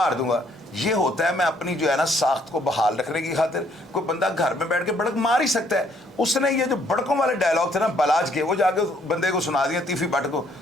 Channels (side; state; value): both; normal; correlation 0.66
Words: दूंगा। ये होता है मैं अपनी जो है ना साख्त को बहाल रखने की खातिर। कोई बंदा घर में बैठ के बड़क मार ही सकता है। उसने ये जो बड़कों वाले डायलॉग थे ना बलाज के, वो जाके बंदे को सुना दिया तीफी भट्ट को।